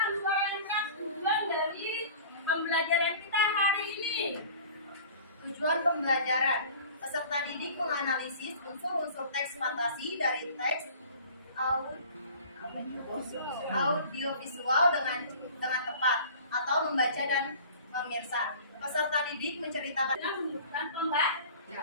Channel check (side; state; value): both; inverted; correlation -0.44